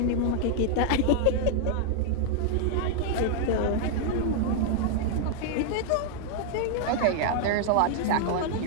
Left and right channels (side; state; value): both; different; correlation -0.01